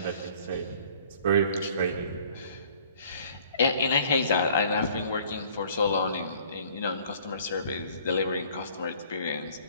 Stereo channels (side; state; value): both; inverted; correlation -0.54